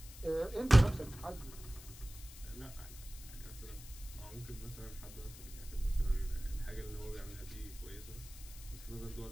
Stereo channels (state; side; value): noise; left; hiss, 16 dB below the sound